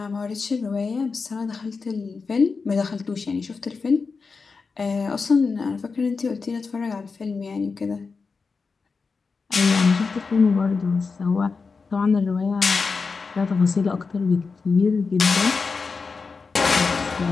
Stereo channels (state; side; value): quieter; right; 4.7 dB